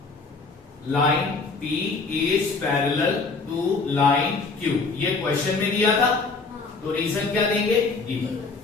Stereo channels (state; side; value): quieter; right; 4.2 dB